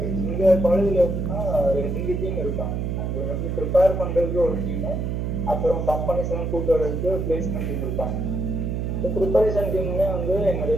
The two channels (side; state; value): right; noise; hum, 1 dB below the sound